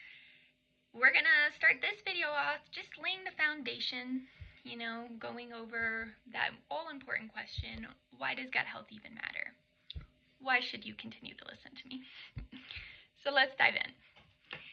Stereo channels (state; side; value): identical; both; correlation 1.00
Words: We're going to start this video off just laying the foundation, going over that all-important question, why does gut health even matter? Why should you continue to listen to me? So let's dive in.